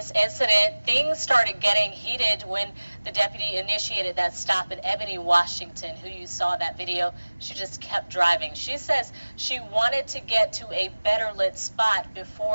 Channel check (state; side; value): inverted; both; correlation -1.00